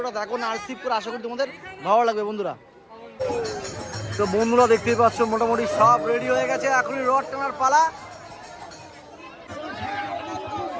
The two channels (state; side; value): identical; both; correlation 1.00